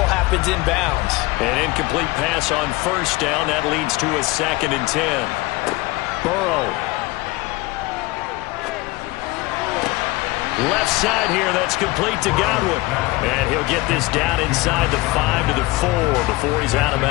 happens inbounds. An incomplete pass on 1st down. That leads to a 2nd and 10. Burrow. Left side here, that's complete to Godwin. And he'll get this down inside the 5 to the 4 before he's out of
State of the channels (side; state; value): right; quieter; 21.0 dB